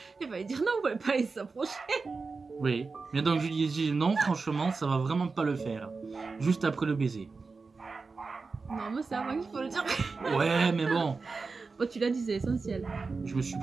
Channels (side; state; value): left; quieter; 4.3 dB